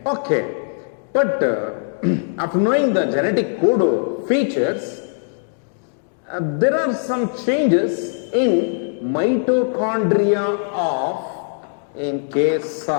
Okay, but after knowing the genetic code features, there are some changes in mitochondria in case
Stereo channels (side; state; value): right; silent; digital silence